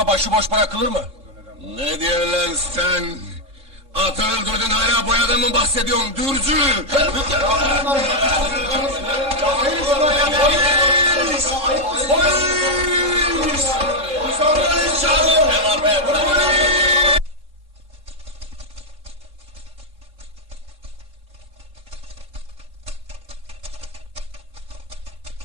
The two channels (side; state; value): left; late; 3.7 ms